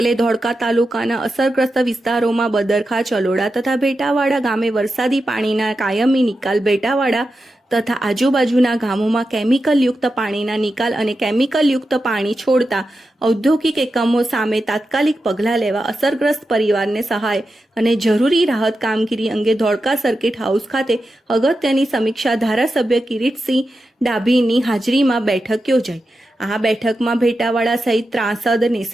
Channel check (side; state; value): both; normal; correlation 0.90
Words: ધોળકા તાલુકાના અસરગ્રસ્ત વિસ્તારોમાં બદરખા, ચલોડા તથા ભેટાવાડા ગામે વરસાદી પાણીના કાયમી નિકાલ, ભેટાવાડા તથા આજુબાજુના ગામોમાં કેમિકલયુક્ત પાણીના નિકાલ અને કેમિકલયુક્ત પાણી છોડતા ઔદ્યોગિક એકમો સામે તાત્કાલિક પગલાં લેવા અસરગ્રસ્ત પરિવારને સહાય અને જરૂરી રાહત કામગીરી અંગે ધોળકા સર્કિટ હાઉસ ખાતે અગત્યની સમીક્ષા ધારાસભ્ય કિરીટસિંહ ડાભીની હાજરીમાં બેઠક યોજાઈ। આ બેઠકમાં ભેટાવાડા સહિત ત્રાસદ,